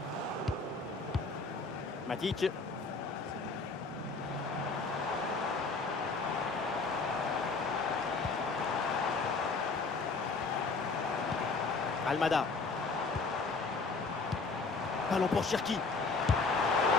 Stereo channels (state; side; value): quieter; right; 4.1 dB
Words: Matic. Almada. Ballon pour Cherki.